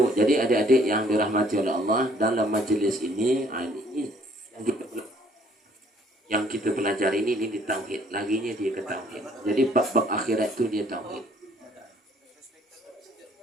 jadi adik-adik yang dirahmati oleh Allah dalam majlis ini, ini yang kita pelajari ini di tauhid. Laginya dia ke tauhid. Jadi bab-bab akhirat itu dia tauhid.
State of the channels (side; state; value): both; normal; correlation 0.61